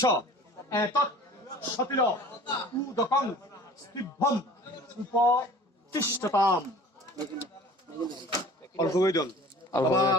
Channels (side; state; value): both; normal; correlation 0.46